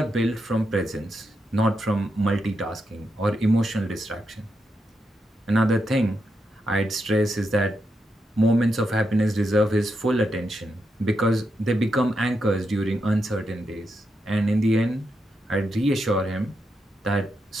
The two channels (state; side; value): normal; both; correlation 0.84